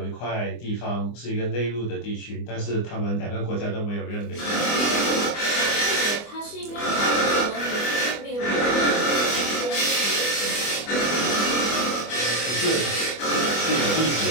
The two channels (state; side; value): late; right; 24 ms